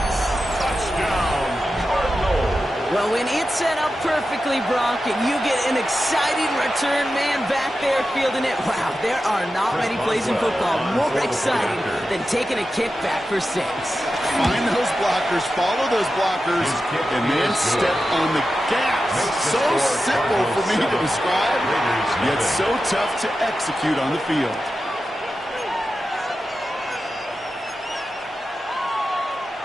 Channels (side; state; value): both; normal; correlation 0.91